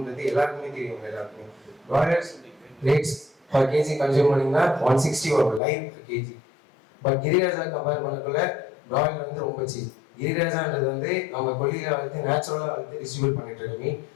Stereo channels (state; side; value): drops out; right; at 5.6 s